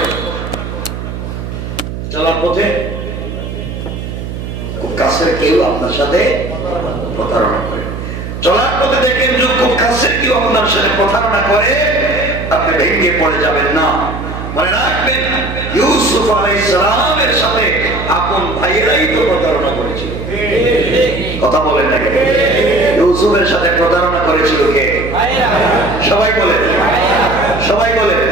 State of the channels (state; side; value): noise; right; hum, 7 dB below the sound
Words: চলার পথে খুব কাছের কেউ আপনার সাথে প্রতারণা করে, চলার পথে দেখেন যে খুব কাছের কেউ আপনার সাথে প্রতারণা করে, আপনি ভেঙে পড়ে যাবেন না। মনে রাখবেন ইউসুফ আলাইহিস সালামের সাথে আপন ভাইয়েরাই তো প্রতারণা করেছিল। কথা বলেন না? ইউসুফের সাথে প্রতারণা করেছিল কে? সবাই বলেন, সবাই বলেন।